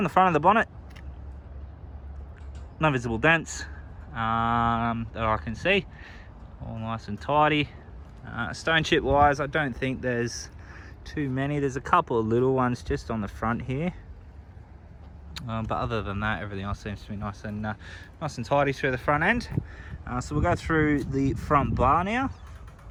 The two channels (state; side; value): identical; both; correlation 1.00